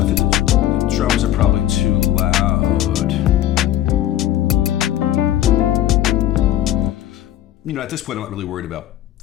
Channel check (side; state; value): right; quieter; 12.8 dB